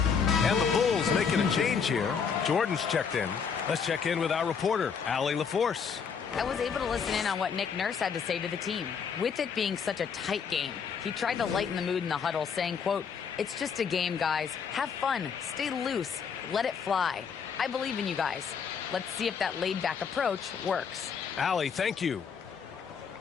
And the Bulls making a change here. Jordan's checked in. Let's check in with our reporter, Allie LaForce. I was able to listen in on what Nick Nurse had to say to the team. With it being such a tight game, he tried to lighten the mood in the huddle, saying, quote, "It's just a game, guys. Have fun. Stay loose. Let it fly. I believe in you guys. Let's see if that laid-back approach works." Allie, thank you.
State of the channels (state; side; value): quieter; right; 6.5 dB